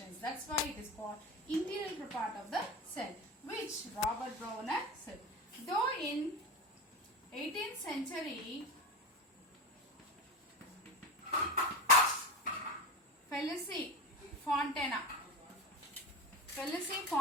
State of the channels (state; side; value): normal; both; correlation 0.24